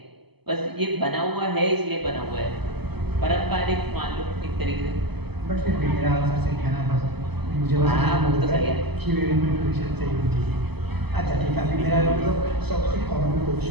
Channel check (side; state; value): left; late; 0.98 ms